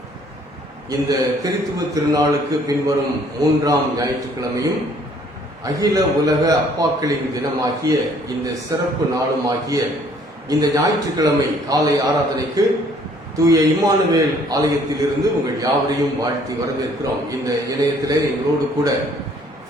இந்த திருத்துவ திருநாளுக்கு பின்வரும் 3ஆம் ஞாயிற்றுக்கிழமையும் அகில உலக அப்பாக்களின் தினமாகிய இந்த சிறப்பு நாளுமாகிய இந்த ஞாயிற்றுக்கிழமை காலை ஆராதனைக்கு தூய இம்மானுவேல் ஆலயத்திலிருந்து உங்கள் யாவரையும் வாழ்த்தி வரவேற்கிறோம். இந்த இணையத்திலே எங்களோடு கூட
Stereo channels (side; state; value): both; normal; correlation 0.60